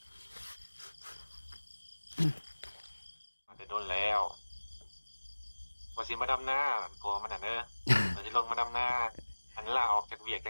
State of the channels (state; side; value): inverted; both; correlation -1.00